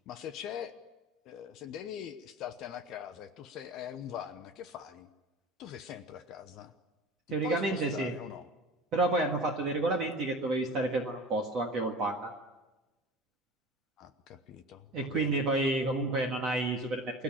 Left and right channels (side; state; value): both; normal; correlation 0.37